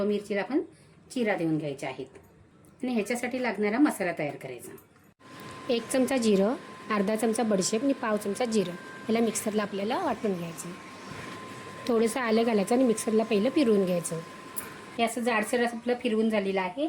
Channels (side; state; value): both; identical; correlation 1.00